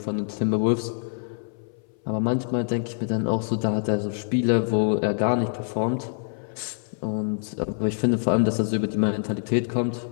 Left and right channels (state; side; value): silent; right; 58 dB below the other